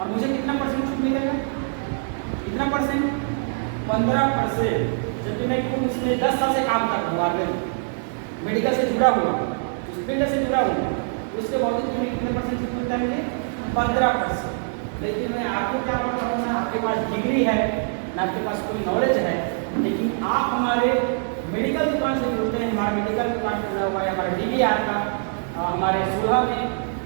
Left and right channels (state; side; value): silent; left; digital silence